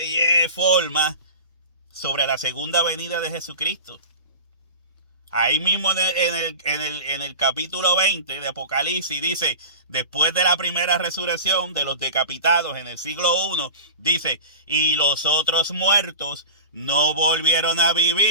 forma, sobre la segunda venida de Jesucristo. Ahí mismo en el capítulo 20 de Apocalipsis dice, después de la primera resurrección de los decapitados en el siglo I, dice, y los otros muertos no volvieron a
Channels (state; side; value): inverted; both; correlation -0.33